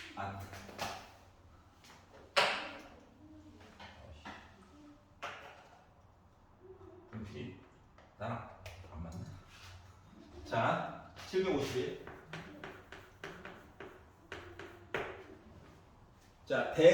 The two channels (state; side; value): identical; both; correlation 1.00